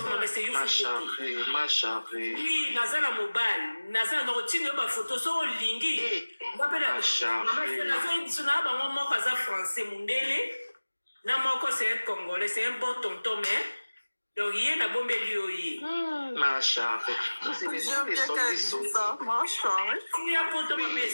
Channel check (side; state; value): both; inverted; correlation -1.00